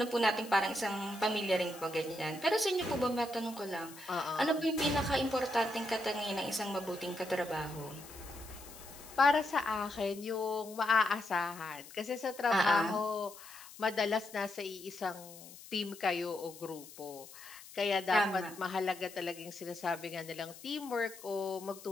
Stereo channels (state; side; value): noise; left; hiss, 17 dB below the sound